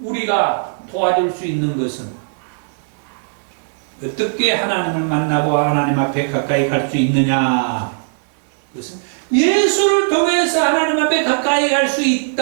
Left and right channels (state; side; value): silent; left; digital silence